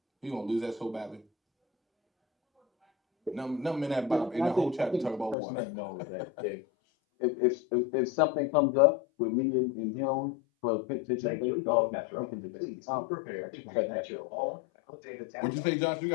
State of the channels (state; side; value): drops out; right; at 5.4 s